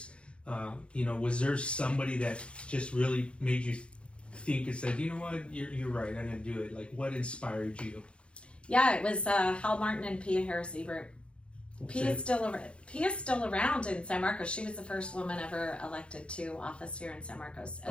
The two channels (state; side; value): late; right; 0.058 ms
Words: Was there somebody that just really made you think and said, you know what, you're right, I'm gonna do it? Like, what inspired you? Yeah, it was Hal Martin and Pia Harris Ebert. Pia's still around in San Marcos. She was the first woman ever elected to office here in San Marcos as